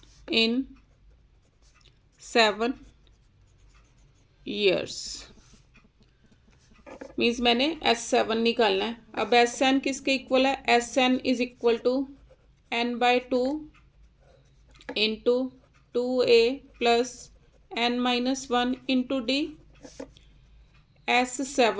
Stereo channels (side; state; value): both; identical; correlation 1.00